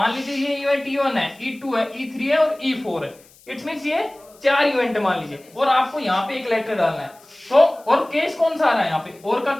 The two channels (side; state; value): left; noise; hiss, 27 dB below the sound